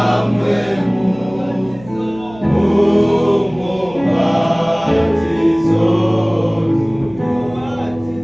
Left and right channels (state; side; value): noise; right; hum, 20 dB below the sound